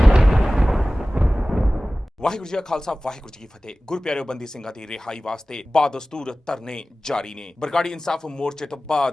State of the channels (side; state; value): both; normal; correlation 0.97